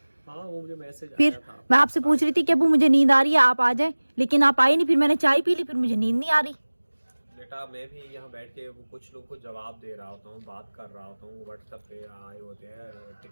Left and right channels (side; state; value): both; inverted; correlation -1.00